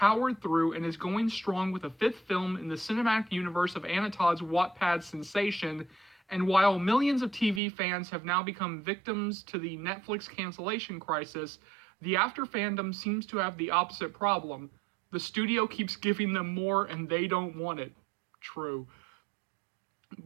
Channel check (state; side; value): drops out; left; at 7.6 s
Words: through and is going strong with a fifth film in the cinematic universe of Anna Todd's Wattpad sensation. And while millions of TV fans have now become victims to the Netflix cancellation crisis, the After fandom seems to have the opposite problem. The studio keeps giving them more and they don't want it. True.